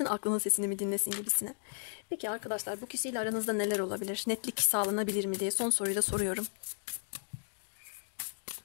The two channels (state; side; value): silent; right; digital silence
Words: aklının sesini mi dinlesin gibisine. Peki arkadaşlar, bu kişiyle aranızda neler olabilir? Netlik sağlanabilir mi diye son soruyu da soruyorum.